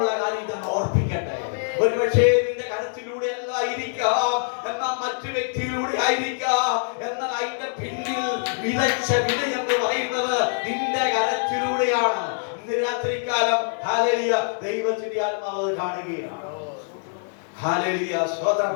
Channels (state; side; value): silent; right; 62 dB below the other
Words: കാര്യം ഇതെന്ന് ഓർപ്പിക്കട്ടെ. ഒരുപക്ഷേ നിന്റെ കരത്തിലൂടെ അല്ലായിരിക്കാം, എന്നാൽ മറ്റു വ്യക്തിയിലൂടെ ആയിരിക്കാം. എന്നാൽ അതിന്റെ പിന്നിൽ വിതച്ച വിത എന്ന് പറയുന്നത് നിന്റെ കരത്തിലൂടെയാണ്. ഇന്ന് രാത്രികാലം ഹല്ലേലൂയ ദൈവത്തിന്റെ ആത്മാവ് കാണുകയാണ്. ഹല്ലേലൂയ സ്തോത്രം.